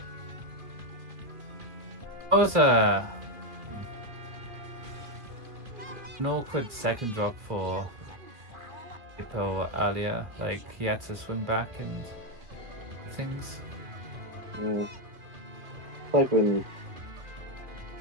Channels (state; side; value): late; left; 2.5 ms